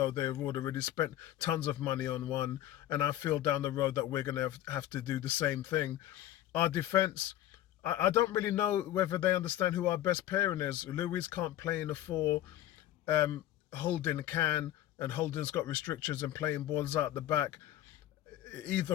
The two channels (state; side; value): quieter; right; 13.2 dB